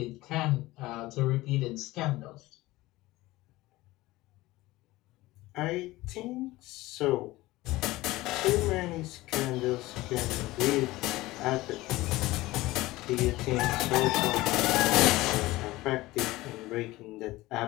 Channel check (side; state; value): right; quieter; 18.8 dB